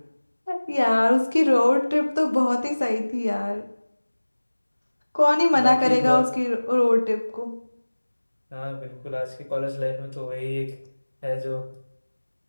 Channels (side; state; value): both; inverted; correlation -1.00